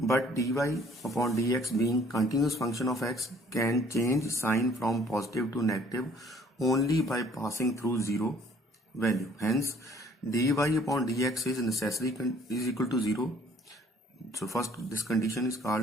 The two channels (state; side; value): normal; both; correlation 0.58